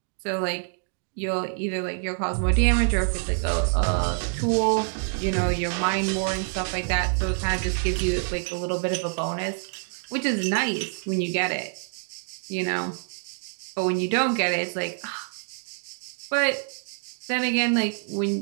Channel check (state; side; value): silent; left; 56 dB below the other